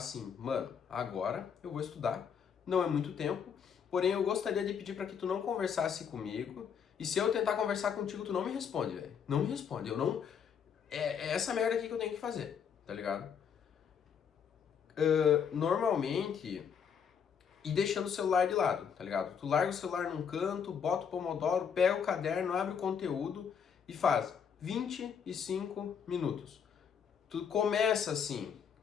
mano, agora eu vou estudar. Não é muito tempo, porém eu gostaria de pedir para que tu não conversasse comigo. E se eu tentar conversar contigo, tu não me responde, velho. Não me responde, eu não... É essa merda aqui que eu tenho que fazer, tá ligado? Normalmente, e deixando o celular de lado, tá ligado? Tu larga o celular num canto, bota o Pomodoro, pega o caderno, abre o conteúdo e faz 25 minutos. Tu começa assim,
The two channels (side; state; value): right; quieter; 7.3 dB